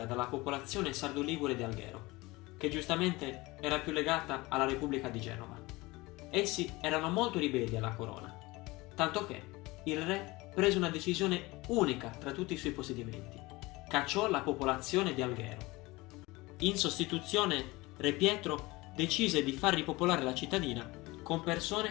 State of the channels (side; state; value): right; quieter; 21.8 dB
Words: dalla popolazione sardo-ligure di Alghero, che giustamente era più legata alla Repubblica di Genova. Essi erano molto ribelli alla corona, tanto che il re prese una decisione unica tra tutti i suoi possedimenti: cacciò la popolazione di Alghero. In sostituzione, Re Pietro decise di far ripopolare la cittadina con